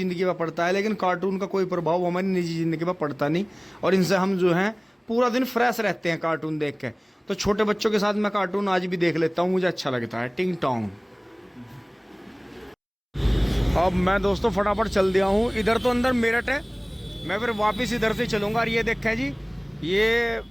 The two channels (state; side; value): identical; both; correlation 1.00